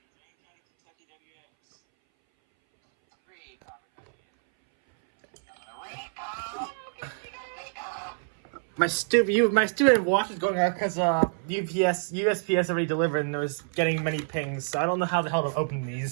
My stupid watch is going out because USPS already delivered and it was getting many pings, so I don't know how the hell to open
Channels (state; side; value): silent; left; 59 dB below the other